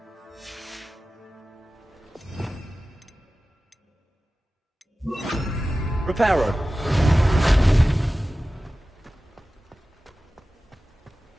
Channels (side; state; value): both; normal; correlation 0.95